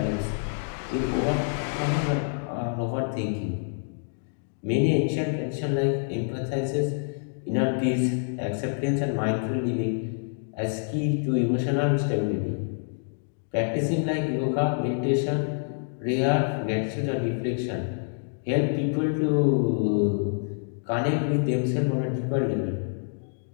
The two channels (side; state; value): right; silent; digital silence